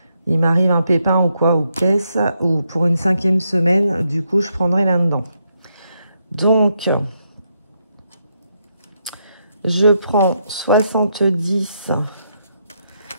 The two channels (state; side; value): inverted; both; correlation -0.79